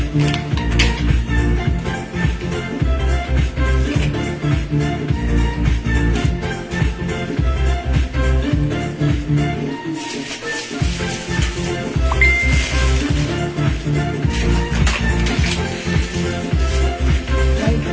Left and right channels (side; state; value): both; identical; correlation 1.00